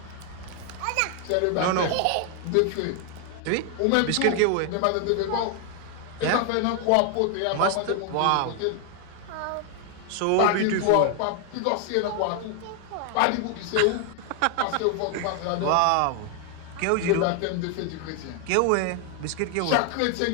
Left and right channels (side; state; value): both; different; correlation 0.00